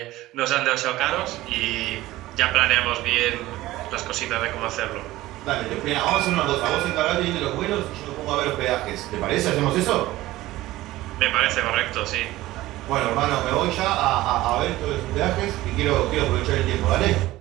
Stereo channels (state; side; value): quieter; left; 16.9 dB